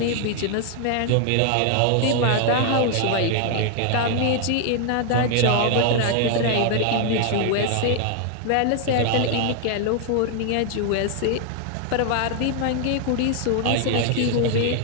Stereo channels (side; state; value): both; different; correlation 0.00